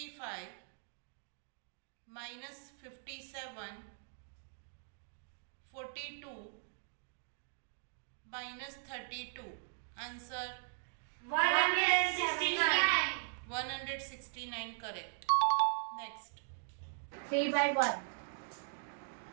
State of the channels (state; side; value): silent; left; digital silence